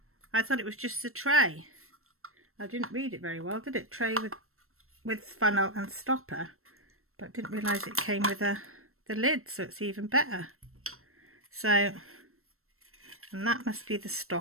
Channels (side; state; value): left; late; 0.62 ms